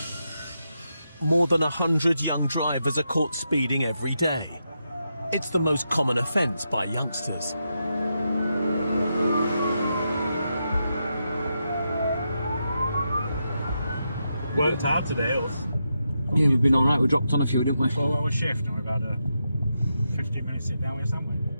More than 100 young drivers are caught speeding every day. It's the most common offence by youngsters. Worked hard today, us. Yeah, we've been all right. We dropped on a few, didn't we? 4-hour shift, and we've had a 15-minute sit down with something.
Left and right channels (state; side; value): inverted; both; correlation -0.85